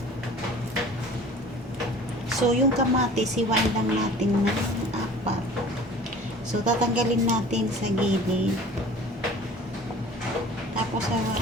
So, yung kamatis, hiwain lang natin ng apat. So, tatanggalin natin sa gilid. Tapos,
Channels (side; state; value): both; normal; correlation 0.45